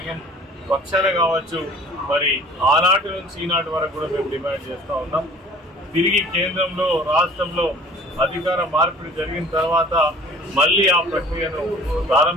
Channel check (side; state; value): both; normal; correlation 0.48